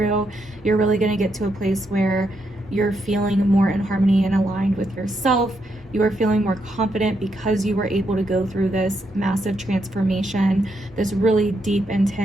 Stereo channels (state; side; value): normal; both; correlation 0.80